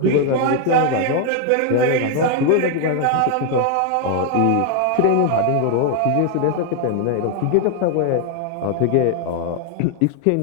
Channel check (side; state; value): both; different; correlation 0.00